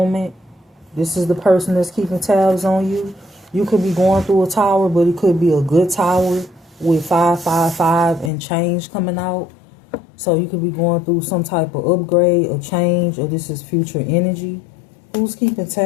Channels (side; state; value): right; drops out; at 8.3 s